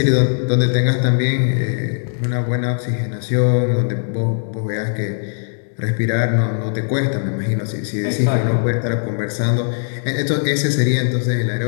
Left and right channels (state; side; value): silent; right; 64 dB below the other